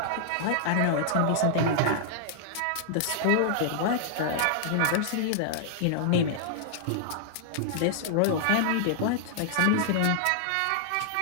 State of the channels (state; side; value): different; both; correlation -0.01